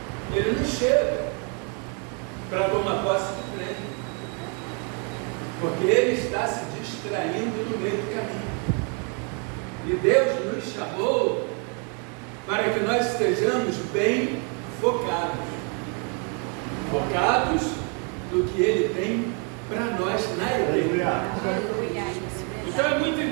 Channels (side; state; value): left; quieter; 37.3 dB